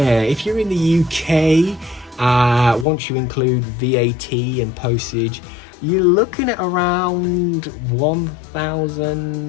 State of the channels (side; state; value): right; drops out; at 2.9 s